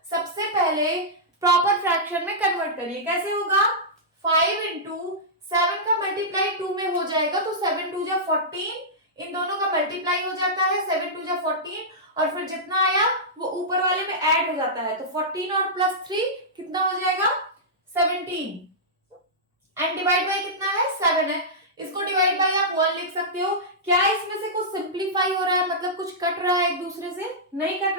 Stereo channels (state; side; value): normal; both; correlation -0.13